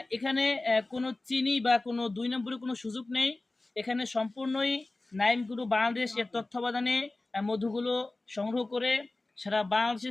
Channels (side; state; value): right; quieter; 3.0 dB